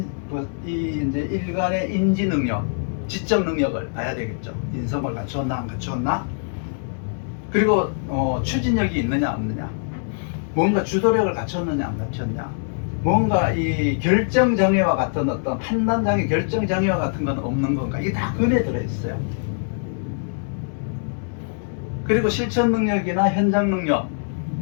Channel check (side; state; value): right; silent; digital silence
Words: 일간의 인지 능력, 지적 능력을 봐야 되겠죠. 인성을 갖추었나 안 갖추었나. 그리고 추진력이 있느냐 없느냐, 뭔가 주도력을 갖췄느냐 안 갖췄냐, 뭔가 이 결정장애와 같은 어떤 판단장애, 결정장애와 같은 건 없는 건가, 이게 다 근에 들어있어요. 그리고 실천 능력이나 현장